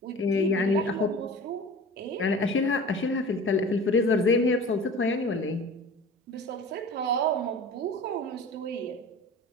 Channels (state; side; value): normal; both; correlation 0.39